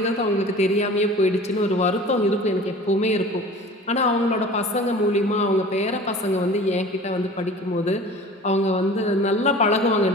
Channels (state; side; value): normal; both; correlation 0.42